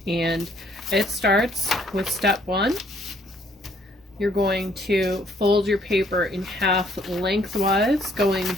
and it starts with step 1. You're going to fold your paper in half lengthwise going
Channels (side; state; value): both; normal; correlation 0.64